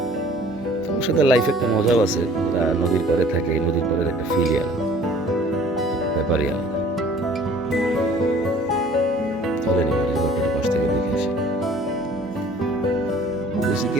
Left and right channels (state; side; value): normal; both; correlation 0.51